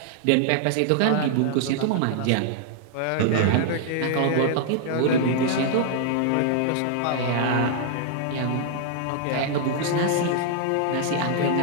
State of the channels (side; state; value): both; different; correlation 0.00